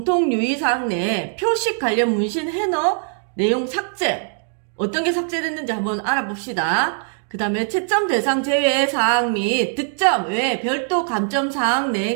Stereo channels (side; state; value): left; silent; 65 dB below the other